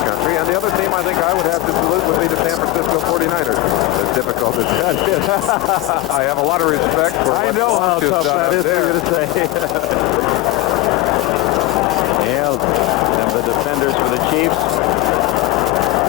and the other team I think I would have to salute would be the San Francisco 49ers. As difficult as that is. I have a lot of respect for I know how tough that is for you to say. Yeah, and the defenders for the Chiefs.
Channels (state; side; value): quieter; right; 16.5 dB